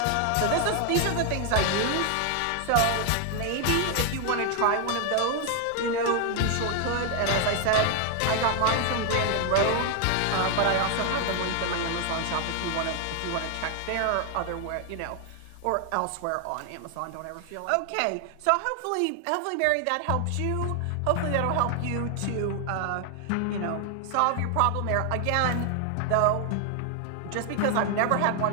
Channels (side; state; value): both; different; correlation 0.00